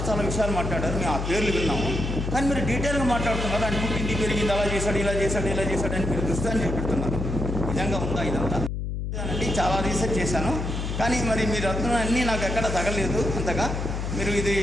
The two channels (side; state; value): left; noise; hum, 3 dB below the sound